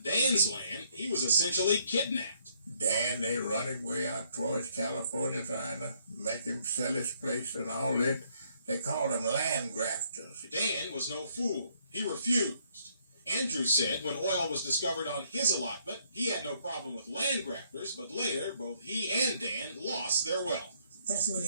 Dan's land, he was essentially kidnapped. Dan, they run him way out towards California trying to make him sell his place and all that. They called him land grafters. Dan was no fool. He refused. Andrew said when oil was discovered on his allotment, he had no problem with land grafters, but later both he and Dan lost their wealth. That's when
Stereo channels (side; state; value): both; inverted; correlation -0.69